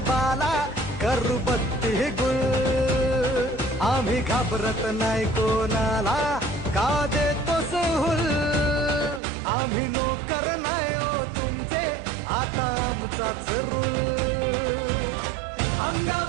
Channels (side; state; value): left; drops out; at 9.2 s